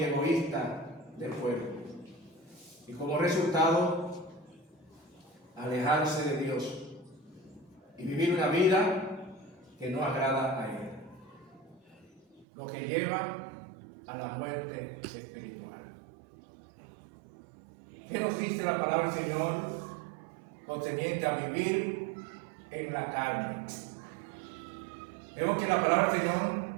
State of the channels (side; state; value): left; drops out; at 12.5 s